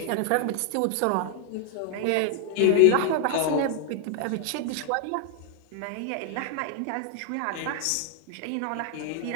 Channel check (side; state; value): both; different; correlation 0.00